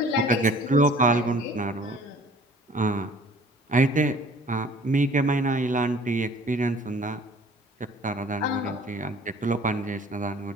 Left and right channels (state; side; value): normal; both; correlation 0.50